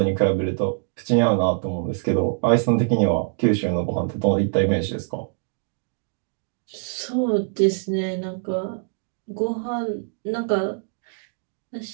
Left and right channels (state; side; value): silent; left; digital silence